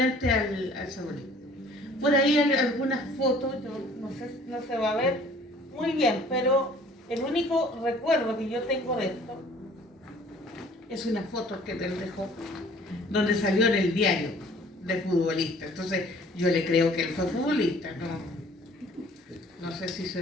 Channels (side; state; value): both; normal; correlation 0.53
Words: al Chapolin. Por ahí hay algunas fotos, yo no sé, no se va a ver muy bien, pero el único recuerdo que yo tengo de esto es una foto que él dejó, donde salió en el diario de futbolista. Entonces yo le creo que él fue futbolista, no sé si se